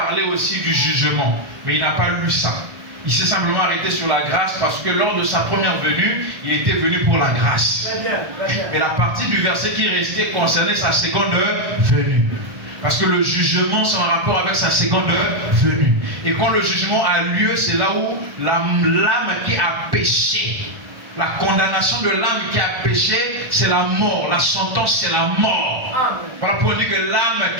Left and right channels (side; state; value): left; late; 1.5 ms